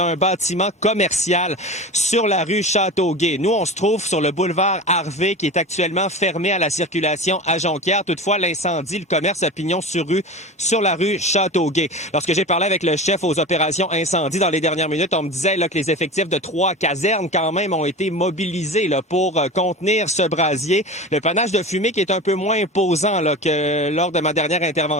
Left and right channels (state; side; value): normal; both; correlation 0.30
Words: bâtiment commercial sur la rue Châteauguay. Nous, on se trouve sur le boulevard Harvey qui est actuellement fermé à la circulation à Jonquière. Toutefois, l'incendie, le commerce a pignon sur rue sur la rue Châteauguay. Lorsque j'ai parlé avec le chef aux opérations incendie dans les dernières minutes, on me disait là, que les effectifs de 3 casernes quand même ont été mobilisés là, pour contenir ce brasier. Le panache de fumée qui est un peu moins imposant là, que lors de ma dernière